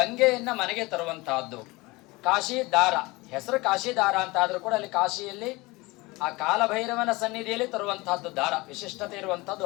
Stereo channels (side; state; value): right; quieter; 22.8 dB